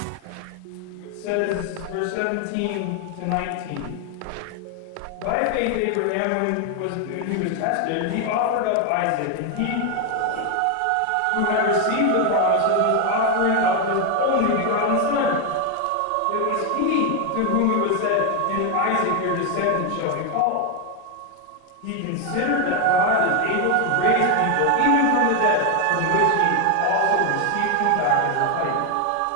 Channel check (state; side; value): different; both; correlation 0.01